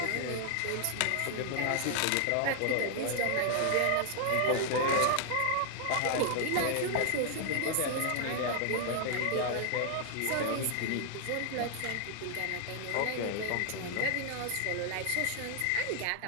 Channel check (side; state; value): both; different; correlation 0.00